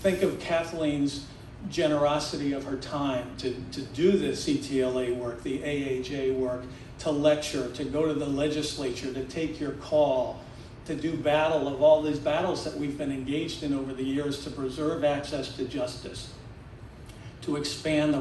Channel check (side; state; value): both; identical; correlation 1.00